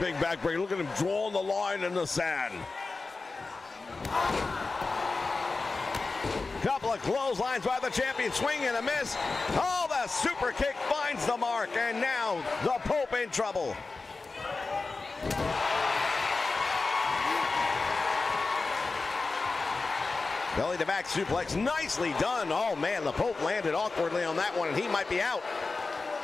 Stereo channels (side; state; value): right; quieter; 3.8 dB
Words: backbreaker. Look at him drawing the line in the sand. Couple of clotheslines by the champion, swing and a miss. Oh, the super kick finds the mark, and now the Pope in trouble. Belly to back suplex, nicely done. Oh man, the Pope landed awkwardly on that one, and he might be out.